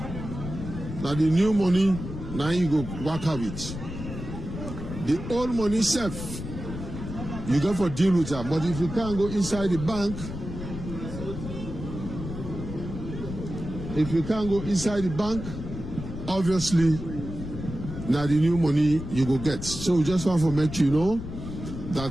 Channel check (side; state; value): left; noise; rumble, 8 dB below the sound